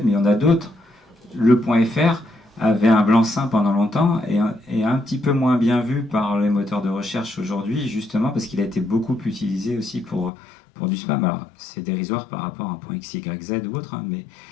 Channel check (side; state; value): right; drops out; at 10.3 s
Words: mais il y en a d'autres. Le point .fr avait un blanc-seing pendant longtemps et un petit peu moins bien vu par les moteurs de recherche aujourd'hui, justement parce qu'il a été beaucoup utilisé aussi pour du spam. Alors, c'est dérisoire par rapport à un point XYZ ou autre, hein, mais...